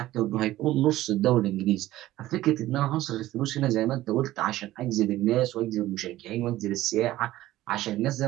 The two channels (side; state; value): left; quieter; 15.6 dB